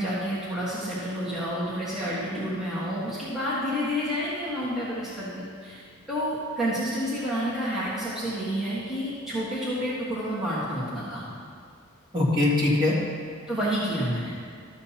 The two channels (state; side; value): normal; both; correlation 0.54